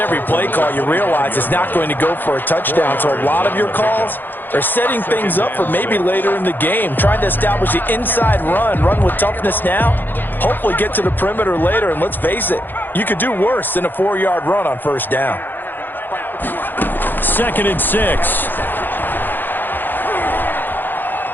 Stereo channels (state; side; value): late; right; 0.091 ms